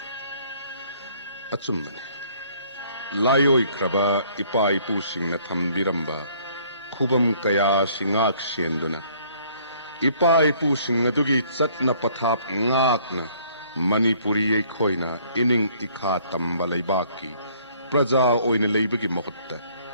achumne layoi kraba ipa ipu singna thambiramba khubam kaya singak senduna ipa ipu singadugi chatna pathap ngakna Manipuri ekhoina ining ikha tamba leibaki praja oina leibagi mahutta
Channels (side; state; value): both; inverted; correlation -0.61